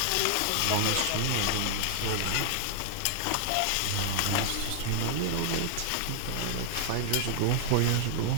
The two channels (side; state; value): both; different; correlation -0.01